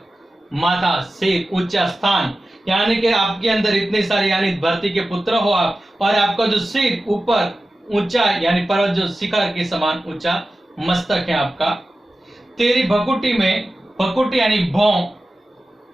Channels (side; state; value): both; normal; correlation 0.94